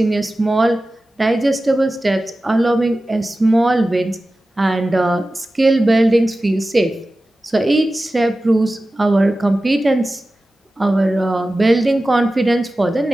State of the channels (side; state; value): both; normal; correlation 0.95